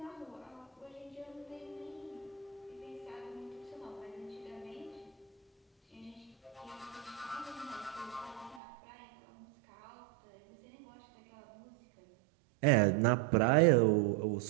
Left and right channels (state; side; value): drops out; left; at 8.6 s